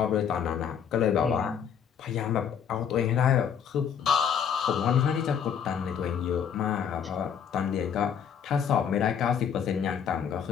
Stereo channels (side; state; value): right; quieter; 7.9 dB